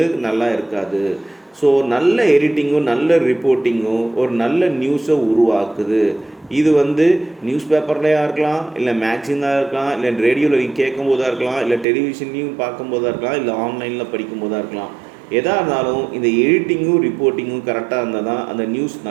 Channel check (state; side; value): drops out; left; at 11.9 s